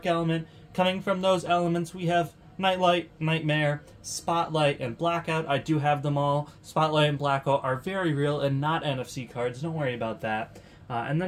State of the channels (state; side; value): identical; both; correlation 1.00